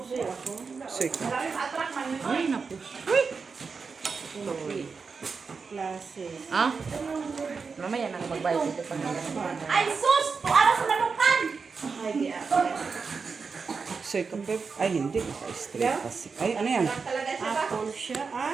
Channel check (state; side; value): quieter; left; 5.1 dB